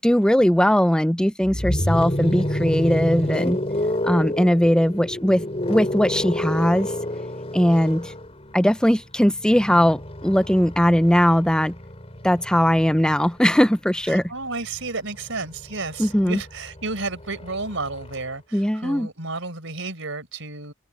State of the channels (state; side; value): normal; both; correlation 0.93